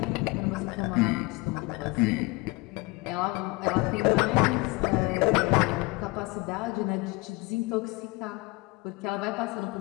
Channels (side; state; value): right; quieter; 24.1 dB